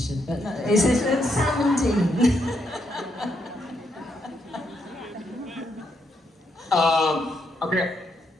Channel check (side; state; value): both; normal; correlation 0.78